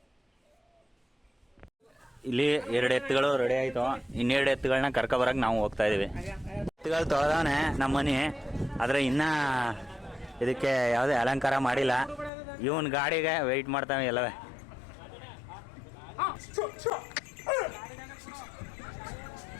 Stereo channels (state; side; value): drops out; right; at 12.3 s